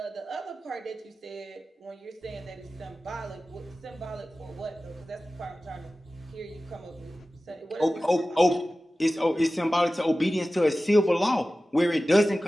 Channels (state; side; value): normal; both; correlation 0.96